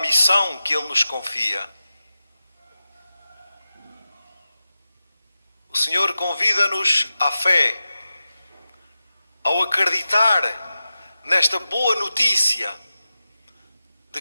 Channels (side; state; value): both; inverted; correlation -0.93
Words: que Ele nos confia. O Senhor convida-nos à fé, ao acreditar nesta boa notícia de